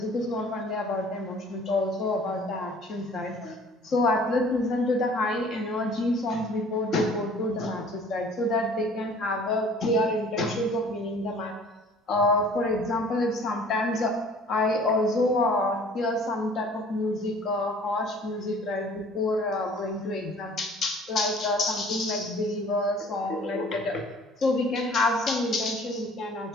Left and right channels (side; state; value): both; normal; correlation 0.50